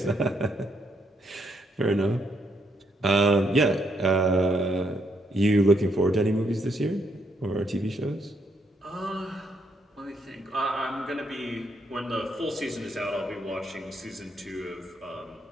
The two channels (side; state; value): both; normal; correlation 0.75